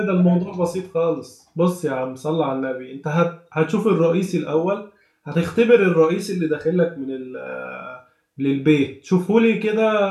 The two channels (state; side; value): identical; both; correlation 1.00